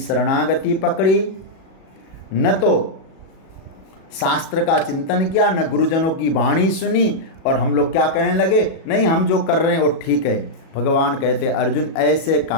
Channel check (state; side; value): late; right; 37 ms